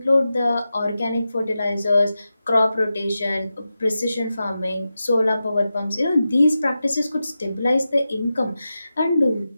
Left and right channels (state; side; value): inverted; both; correlation -0.92